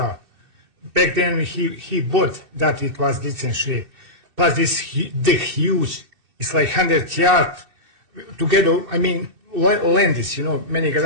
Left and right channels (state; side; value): late; left; 2.7 ms